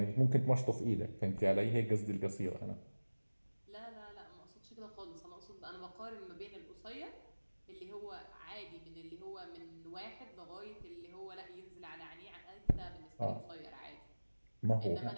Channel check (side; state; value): both; inverted; correlation -1.00